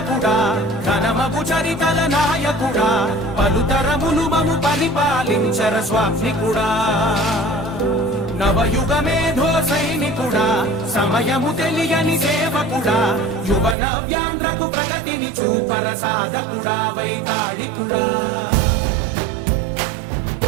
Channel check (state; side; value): drops out; left; at 13.8 s